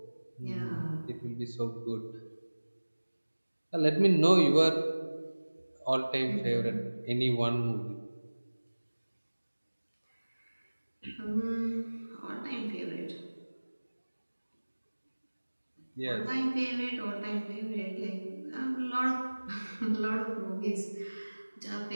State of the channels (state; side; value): inverted; both; correlation -1.00